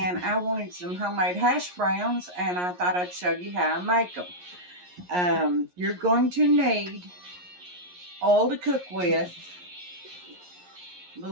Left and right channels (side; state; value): left; late; 11 ms